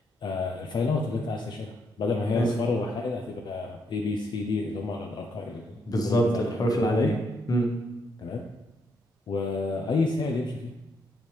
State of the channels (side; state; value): both; normal; correlation 0.76